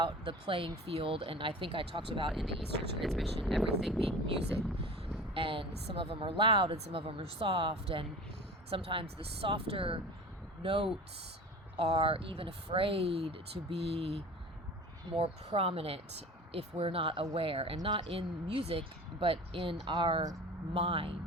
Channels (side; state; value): both; normal; correlation 0.37